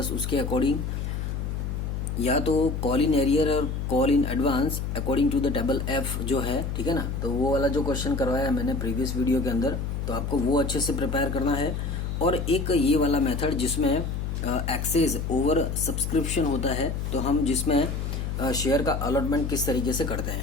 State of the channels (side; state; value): left; noise; hum, 3 dB below the sound